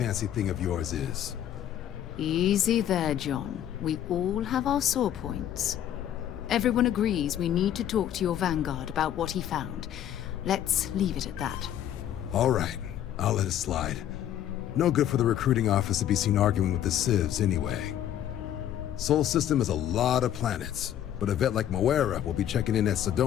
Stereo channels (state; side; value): quieter; right; 11.0 dB